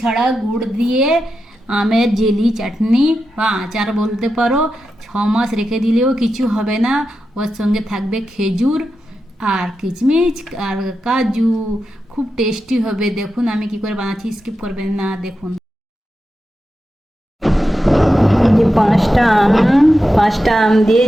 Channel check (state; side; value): normal; both; correlation 0.89